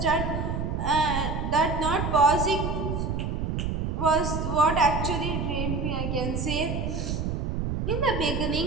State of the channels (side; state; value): right; noise; rumble, 2 dB below the sound